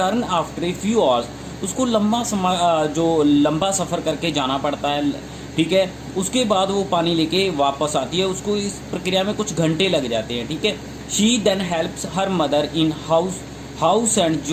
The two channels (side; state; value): both; identical; correlation 1.00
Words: after a few hours. उसको लंबा सफ़र करके जाना पड़ता है, ठीक है। उसके बाद वो पानी लेके वापस आती है, उसको इस प्रक्रिया में कुछ घंटे लग जाते हैं, ठीक है। She then helps her mother in house and